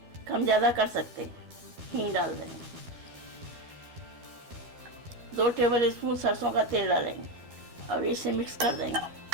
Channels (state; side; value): late; left; 12 ms